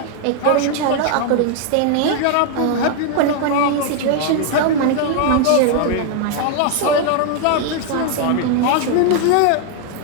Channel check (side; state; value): both; different; correlation 0.00